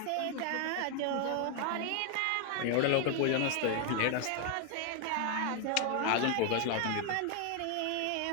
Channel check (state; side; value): different; both; correlation 0.01